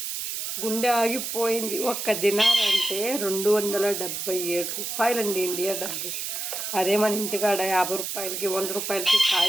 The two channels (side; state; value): right; noise; hiss, 4 dB below the sound